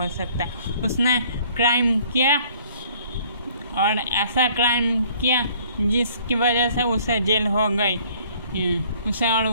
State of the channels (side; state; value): both; inverted; correlation -0.58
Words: सकता। उसने क्राइम किया और ऐसा क्राइम किया जिसकी वजह से उसे जेल हो गई, उसे और